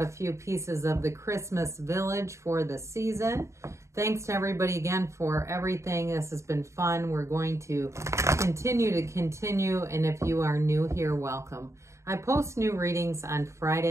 a few pieces of the Christmas Village for the season. Thanks to everybody again for everything. This has been fun. We're going to continue, and if you are new here, welcome. I post new readings on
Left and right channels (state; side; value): late; left; 0.14 ms